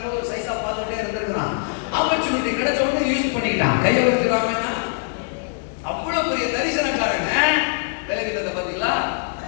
ஒரு சைஸா பார்த்துட்டே இருந்திருக்கிறான். ஆப்பர்ச்சுனிட்டி கிடைச்ச உடனே யூஸ் பண்ணிக்கிட்டான். கையை வச்சுக்கிறாங்கன்னா அவ்வளவு பெரிய தரிசனக்காரங்க. பலவீனத்தை பாத்தீங்களா?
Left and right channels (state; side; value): silent; right; digital silence